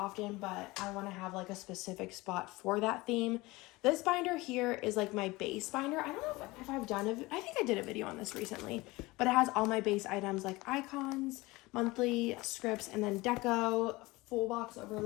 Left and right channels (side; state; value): right; quieter; 21.5 dB